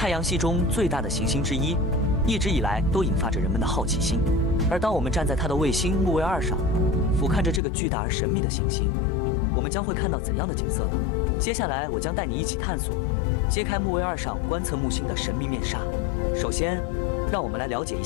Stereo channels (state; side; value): drops out; right; at 7.6 s